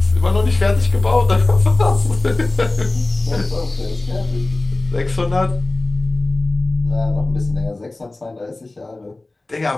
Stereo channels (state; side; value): quieter; right; 3.0 dB